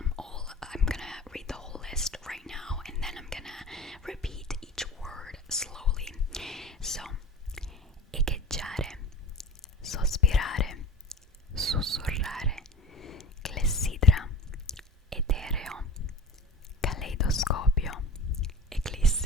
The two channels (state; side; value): normal; both; correlation 0.38